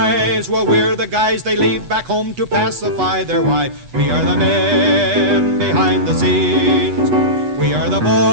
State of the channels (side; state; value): left; late; 8.2 ms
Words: well, we're the guys they leave back home to pacify their wives. We are the men behind the scenes. We are the